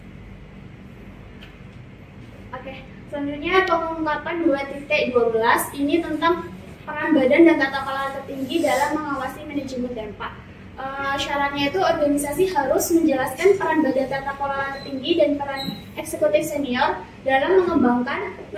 Oke, selanjutnya pengungkapan 2.12 ini tentang peran badan dan tata kelola tertinggi dalam mengawasi manajemen dampak. Syaratnya itu organisasi harus menjelaskan peran badan tata kelola tertinggi dan peran eksekutif senior dalam mengembangkan,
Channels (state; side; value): identical; both; correlation 1.00